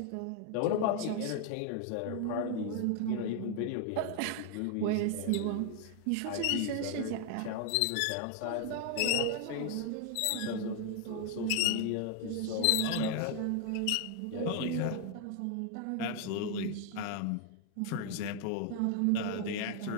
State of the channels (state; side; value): different; both; correlation 0.00